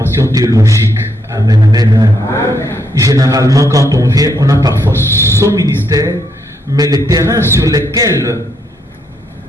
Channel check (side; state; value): both; normal; correlation 0.76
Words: théologique. Amen, amen. Amen. Généralement, quand on vient, on a parfois son ministère, mais les terrains sur lesquels